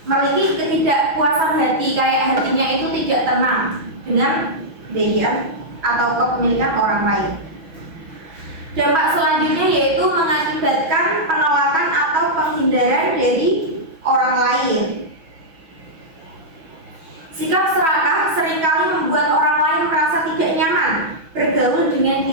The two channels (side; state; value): left; late; 6.2 ms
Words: memiliki ketidakpuasan hati, kayak hatinya itu tidak tenang dengan kebaikan atau kepemilikan orang lain. Dampak selanjutnya yaitu mengakibatkan penolakan atau penghindaran dari orang lain. Sikap serakah seringkali membuat orang lain merasa tidak nyaman bergaul dengan